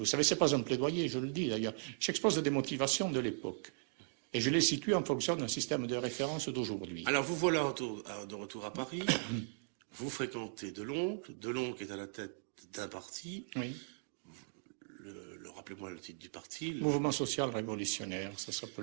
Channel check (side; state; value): left; silent; digital silence